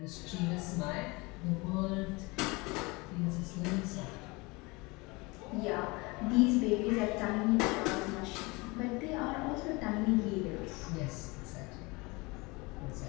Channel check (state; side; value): quieter; right; 25.4 dB